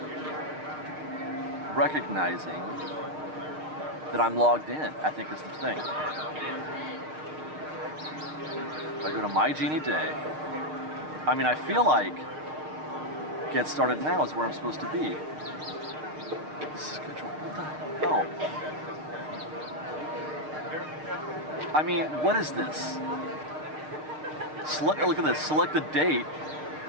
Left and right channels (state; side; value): late; left; 6.5 ms